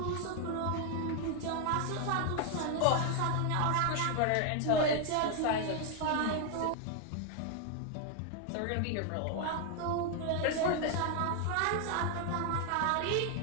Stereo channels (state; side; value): different; both; correlation 0.00